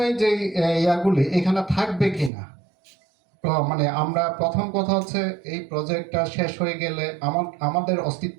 যে ইয়াগুলি এখানে থাকবে কিনা, মানে আমরা প্রথম কথা হচ্ছে এই প্রজেক্টটা শেষ হয়ে গেলে আমাদের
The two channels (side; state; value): left; drops out; at 2.3 s